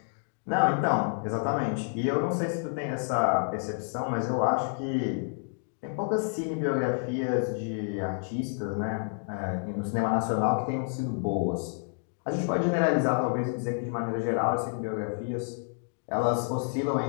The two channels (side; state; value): right; silent; 58 dB below the other